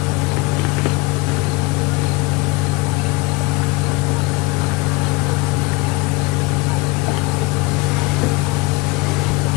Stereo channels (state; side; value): quieter; right; 22.7 dB